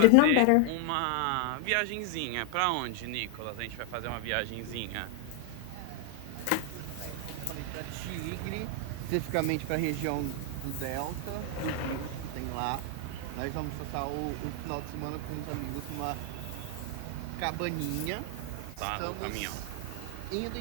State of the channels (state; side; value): different; both; correlation 0.00